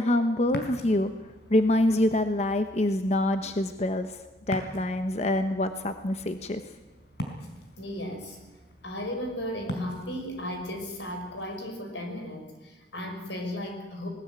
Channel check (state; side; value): normal; both; correlation 0.62